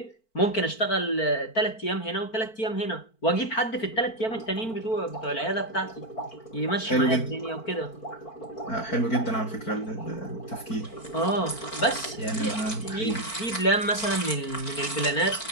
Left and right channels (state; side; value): late; right; 4.5 ms